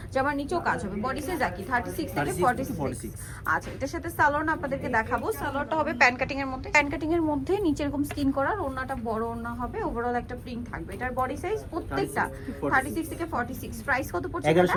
জামার নিচেও কাজ হবে। বডি সাইজ একই 36 থেকে 46। আচ্ছা, এটার সাথে সালোয়ার আপনাদেরকে দেখাবো। সালোয়ারটা হবে প্যান কাটিং এর মধ্যে, প্যান কাটিং এর মধ্যে নিচে এরকম স্কিন করার, ওড়নাটা বড় ওড়না হবে, ওভারঅল একটা প্রিন্ট থাকবে। এটার বডি সাইজ প্রত্যেকটা 36 থেকে 46। প্রাইস কত পড়ছে?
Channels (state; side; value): identical; both; correlation 1.00